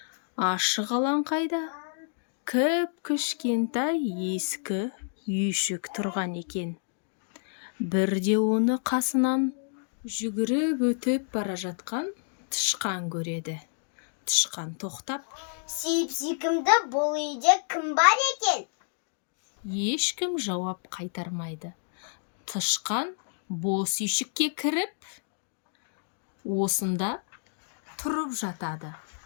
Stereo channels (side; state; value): right; silent; digital silence